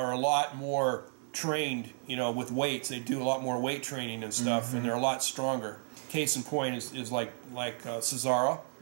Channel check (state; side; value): silent; left; 56 dB below the other